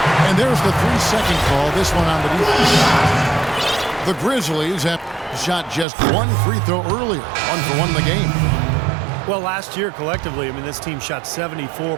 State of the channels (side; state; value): left; drops out; at 5.9 s